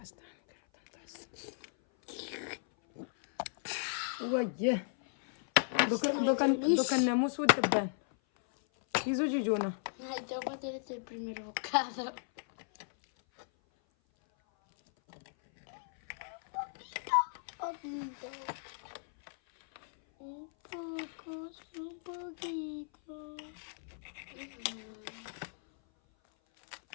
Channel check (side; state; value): right; silent; 54 dB below the other